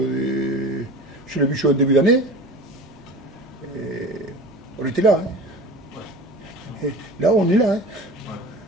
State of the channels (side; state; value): both; normal; correlation 0.36